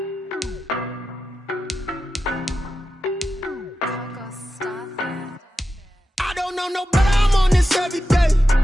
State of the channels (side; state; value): both; normal; correlation 0.91